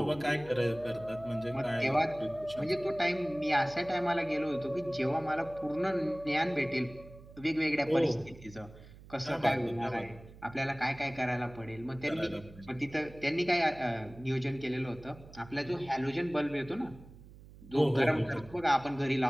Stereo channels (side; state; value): right; noise; hum, 19 dB below the sound